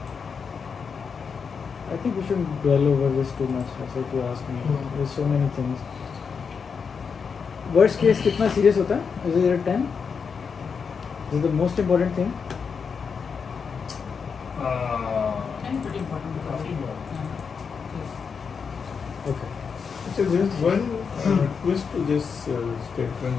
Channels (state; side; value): quieter; right; 5.9 dB